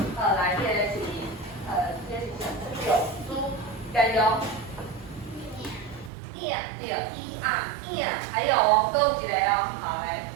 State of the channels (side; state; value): left; drops out; at 6.1 s